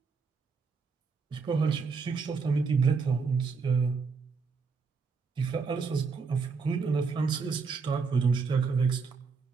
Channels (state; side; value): quieter; left; 5.0 dB